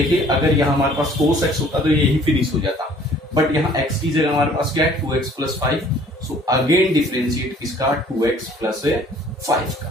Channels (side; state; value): both; normal; correlation 0.55